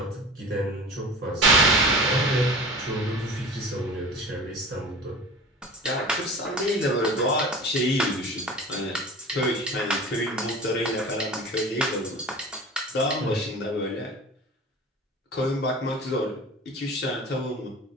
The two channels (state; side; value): normal; both; correlation 0.38